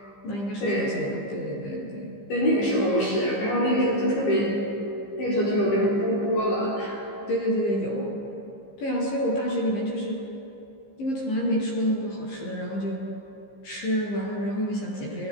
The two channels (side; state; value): right; late; 15 ms